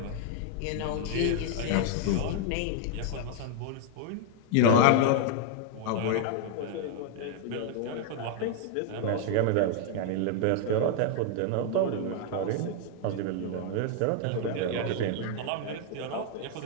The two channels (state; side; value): different; both; correlation 0.00